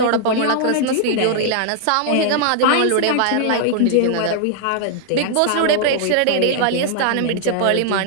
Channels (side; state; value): both; different; correlation 0.00